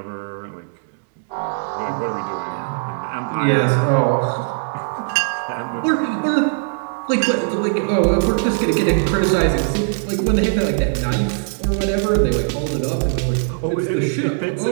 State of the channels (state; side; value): silent; left; digital silence